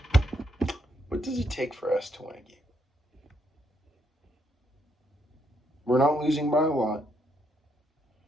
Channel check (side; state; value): both; normal; correlation 0.76